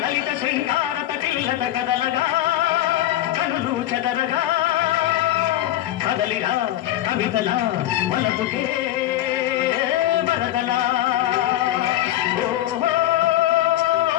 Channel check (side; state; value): right; quieter; 13.8 dB